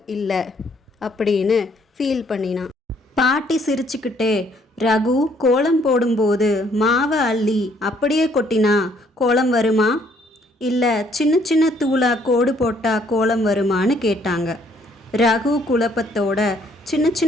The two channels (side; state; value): both; normal; correlation 0.65